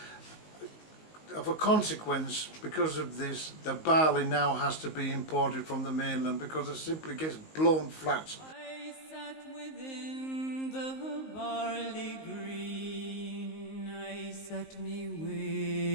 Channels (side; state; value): right; late; 19 ms